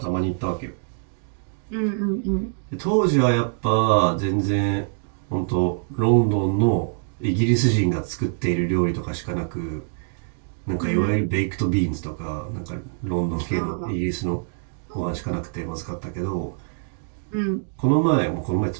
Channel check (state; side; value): silent; left; digital silence